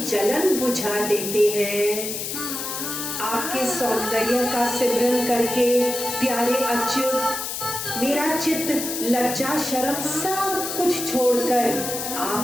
जलन बुझा देते हैं। आपके सौंदर्य का सिमरन करके प्यारे अच्युत, मेरा चित्त लज्जा शर्म सब कुछ छोड़कर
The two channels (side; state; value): left; noise; hiss, 5 dB below the sound